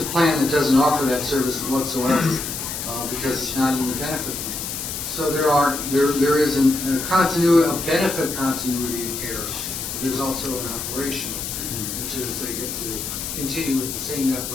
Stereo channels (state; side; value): noise; left; hiss, 5 dB below the sound